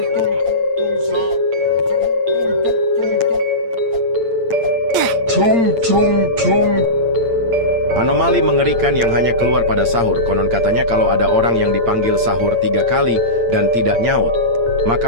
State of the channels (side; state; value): left; late; 8.7 ms